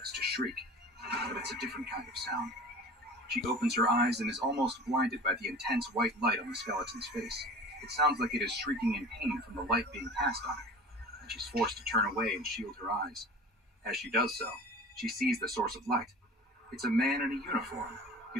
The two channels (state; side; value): normal; both; correlation 0.39